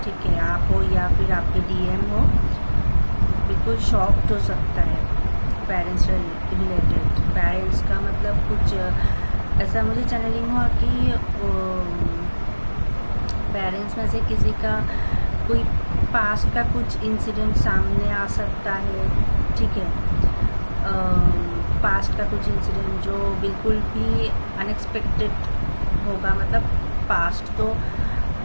ठीक है, आप हो या फिर आपके डीएम हो, बिल्कुल शॉक्ड हो सकता है पेरेंट्स से रिलेटेड। पेरेंट्स का मतलब कुछ ऐसा मुझे चैनलिंग हुआ कि पेरेंट्स में से किसी का कोई पास्ट का कुछ इंसिडेंट सामने आ सकता है, ठीक है, पास्ट का कुछ इंसिडेंट जो बिल्कुल भी अनएक्सपेक्टेड होगा। मतलब पास्ट तो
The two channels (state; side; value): inverted; both; correlation -1.00